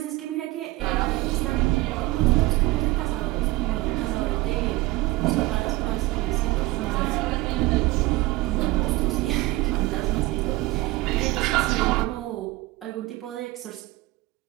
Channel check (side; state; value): left; quieter; 20.2 dB